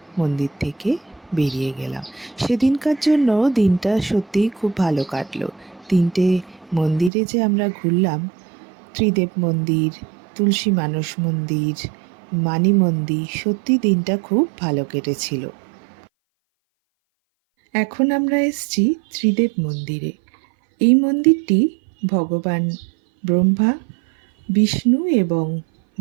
মন্দির থেকে বেরিয়ে গেলাম। সেদিনকার জন্য দিনটা সত্যিই খুব ভালো কাটলো। 3টে মন্দিরে যে আমরা ঘুরলাম, ত্রিদেব মন্দির, তুলসী মানস মন্দির, মানি মন্দির, সত্যি দিনটা খুব ভালো কেটেছিল। এখন আমরা এসেছি ত্রিদেব মন্দিরে। এই মন্দিরটি ভগবান ব্রহ্মা, বিষ্ণু এবং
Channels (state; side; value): drops out; left; at 7.1 s